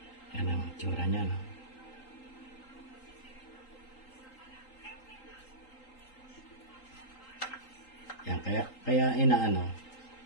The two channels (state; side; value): late; right; 3.8 ms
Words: Yan ang itsura niya, no? Kaya inaano,